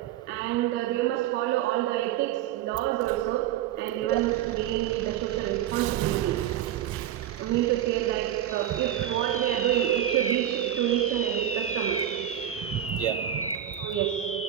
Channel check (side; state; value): left; quieter; 11.0 dB